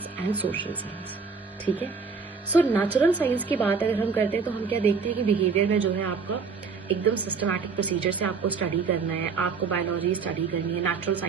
and social science, ठीक है। सो नेचुरल साइंस की बात अगर हम करते हैं तो हम क्या देखते हैं कि बिहेवियर में जो है आपका एकदम सिस्टमैटिक प्रोसीजर से आपको स्टडी करना है, आपको बायोलॉजी स्टडी करनी है, नेचुरल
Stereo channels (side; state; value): left; quieter; 5.2 dB